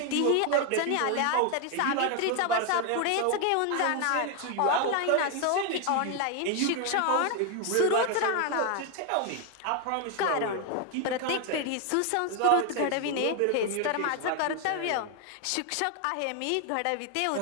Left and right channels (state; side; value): different; both; correlation 0.01